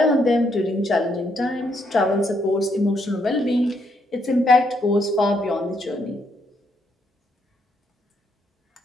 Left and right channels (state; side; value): normal; both; correlation 0.75